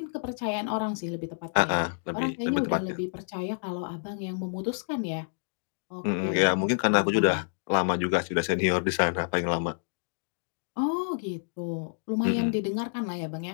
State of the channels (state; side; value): silent; right; digital silence